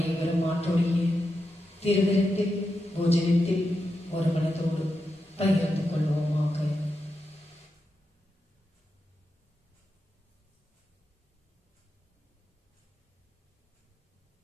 ஆண்டோடைய திருவிருந்தில் போஜனத்தில் ஒரு மனதோடு பகிர்ந்து கொள்வோமாக.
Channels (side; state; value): both; normal; correlation 0.88